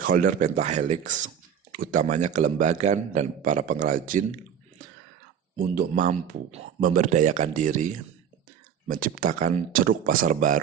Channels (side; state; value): left; quieter; 8.4 dB